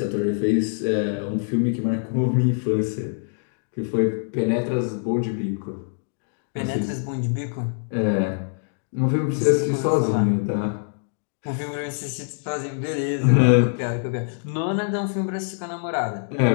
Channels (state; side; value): silent; right; digital silence